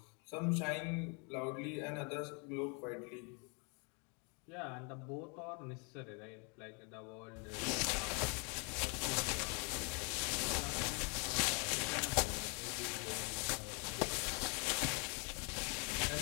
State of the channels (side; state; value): right; quieter; 34.2 dB